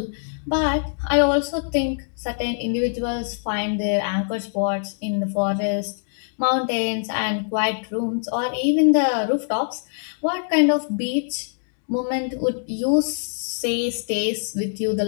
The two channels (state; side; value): silent; right; digital silence